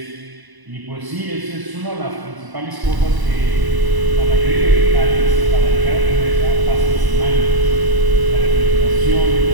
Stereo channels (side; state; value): left; late; 1.0 ms